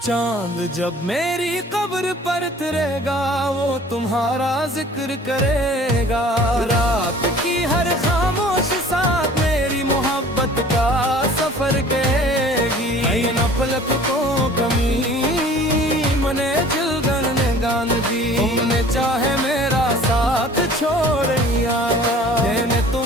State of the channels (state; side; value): normal; both; correlation 0.48